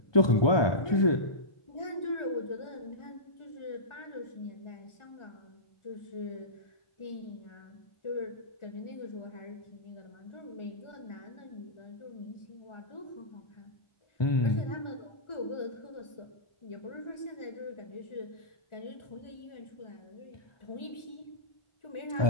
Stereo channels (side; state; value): right; late; 1.4 ms